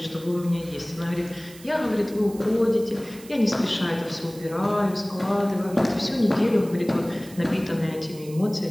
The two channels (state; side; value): noise; right; hiss, 20 dB below the sound